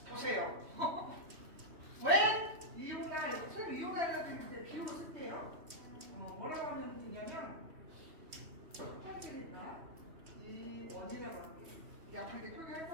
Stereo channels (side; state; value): left; late; 3.1 ms